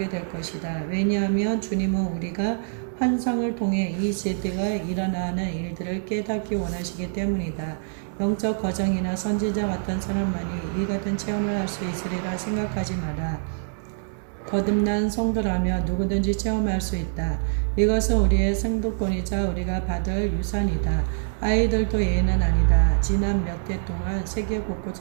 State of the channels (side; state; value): left; silent; digital silence